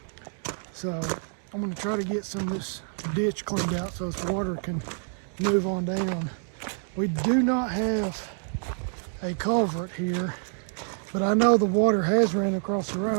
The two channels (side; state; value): left; silent; 60 dB below the other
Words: So I'm going to try to get some of this ditch cleaned out so this water can move on down. We do not have a culvert here, but I know the water has ran across the